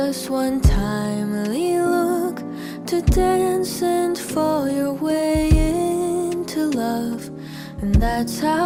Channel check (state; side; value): identical; both; correlation 1.00